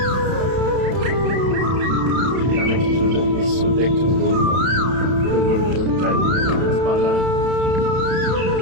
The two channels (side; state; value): left; late; 31 ms